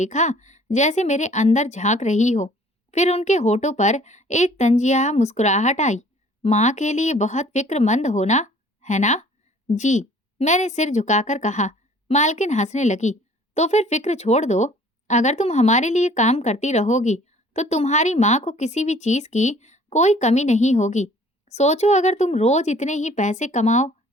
जैसे मेरे अंदर झांक रही हो। फिर उनके होठों पर एक तंजिया मुस्कुराहट आई। माँ के लिए बहुत फिक्रमंद हो ना, है ना? जी, मैंने सिर झुकाकर कहा। मालकिन हंसने लगी। तो फिर फिक्र छोड़ दो। अगर तुम हमारे लिए काम करती रहोगी, तो तुम्हारी माँ को किसी भी चीज की कोई कमी नहीं होगी। सोचो, अगर तुम रोज इतने ही पैसे कमाओ,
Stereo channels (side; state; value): both; normal; correlation 0.53